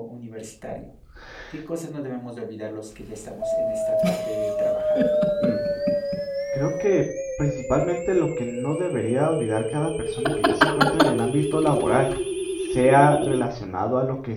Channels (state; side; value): identical; both; correlation 1.00